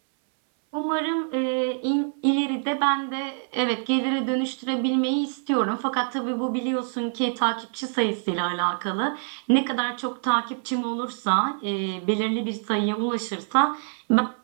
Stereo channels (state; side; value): silent; left; 61 dB below the other